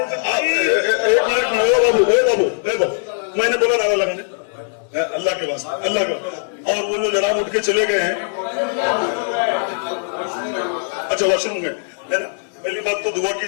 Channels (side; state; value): right; silent; digital silence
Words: मिनट मैंने बोला ना लगा अल्लाह के वास्ते, अल्लाह का। और वो जो जनाब उठ के चले गए हैं, अच्छा वॉशरूम में है ना। पहली बात तो दुआ की